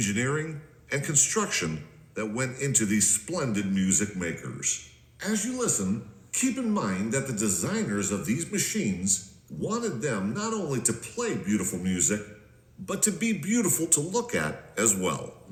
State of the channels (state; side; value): identical; both; correlation 1.00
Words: and construction that went into these splendid music makers. As you listen, keep in mind that the designers of these machines wanted them not only to play beautiful music, but to be beautiful to look at as well.